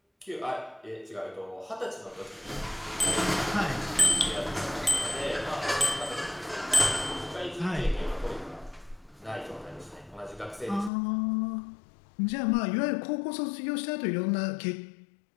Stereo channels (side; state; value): right; drops out; at 10.9 s